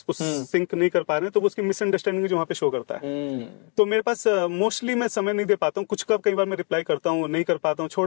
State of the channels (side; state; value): right; quieter; 38.7 dB